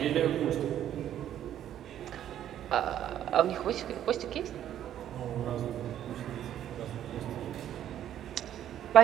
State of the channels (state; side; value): quieter; left; 11.0 dB